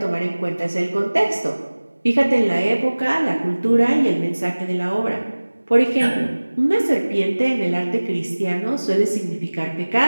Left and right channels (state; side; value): inverted; both; correlation -1.00